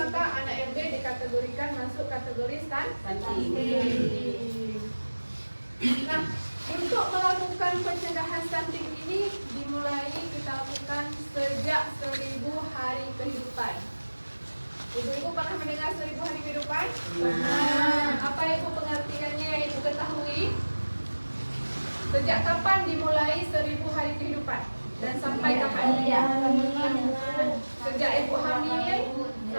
anak yang B dikategorikan masuk kategori stunting. Nah, untuk melakukan pencegahan stunting ini dimulai kita lakukan sejak 1000 hari kehidupan. Ibu-ibu pernah mendengar 1000 hari kehidupan? Nah, apa Ibu pengertiannya yang Ibu ketahui? Sejak kapan dimulai 1000 hari kehidupan? Dan sampai kapan? Sejak Ibu hamil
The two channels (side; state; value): both; inverted; correlation -1.00